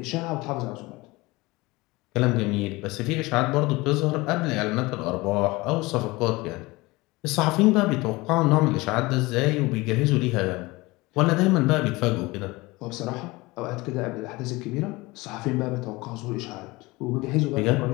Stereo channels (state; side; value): quieter; right; 22.1 dB